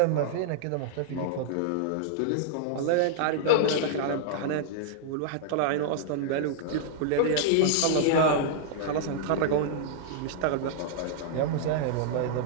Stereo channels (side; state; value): both; different; correlation -0.01